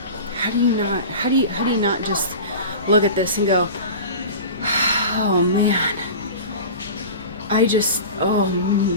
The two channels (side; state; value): both; inverted; correlation -0.33